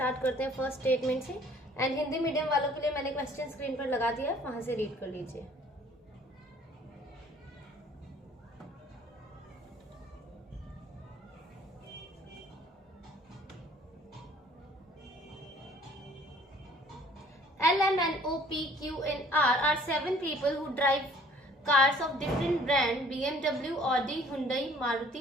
करते हैं first statement से। And Hindi medium वालों के लिए मैंने question screen पर लगा दिया है, वहां से रीड कर लीजिए। L, M, N, O, P, Q and R are 7 people who drive cars of different brand: BMW, Audi, Hyundai, Maruti,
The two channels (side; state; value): both; normal; correlation 0.56